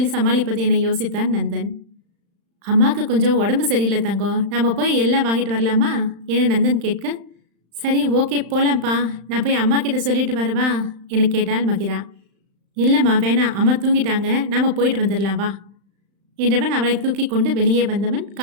சமாளிப்பது என யோசித்தான் நந்தன். அம்மாவுக்கு கொஞ்சம் உடம்பு சரியில்லை தங்கம், நம்ம போய் எல்லாம் வாங்கிட்டு வரலாமா என நந்தன் கேட்க, சரி ஓகே போலாம்ப்பா, நான் போய் அம்மா கிட்ட சொல்லிட்டு வரவா என கேட்டாள் மகிரா. இல்லைம்மா வேணாம், அம்மா தூங்கிட்டாங்க, நாம் போயிட்டு வந்துடலாம் வா என்றவன் அவளை தூக்கி கொண்டு வெளியே வந்தவன்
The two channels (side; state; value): left; late; 35 ms